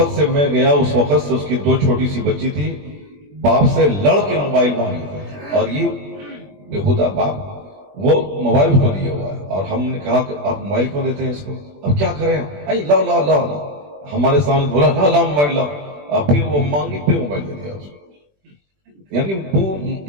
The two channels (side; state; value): left; late; 21 ms